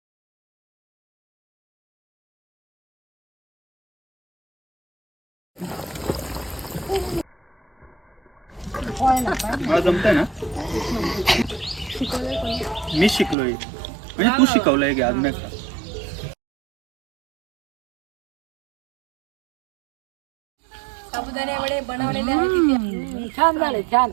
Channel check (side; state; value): left; drops out; at 13.4 s